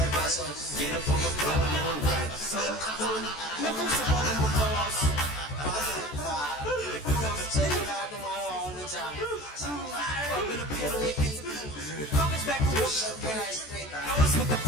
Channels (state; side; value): late; right; 14 ms